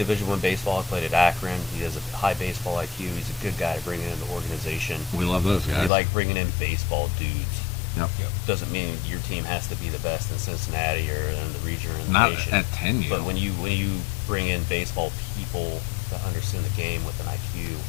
I baseball. He played at Akron. He has a high baseball IQ. He's a good guy to bring into the organization. We love those guys. We like bringing in baseball dudes. Yep. Doesn't mean your team has to be the best in Cincinnati or in the region or in the Not nation. at 10U. But when you bring in baseball people that understand the game with an IQ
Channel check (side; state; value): right; drops out; at 5.9 s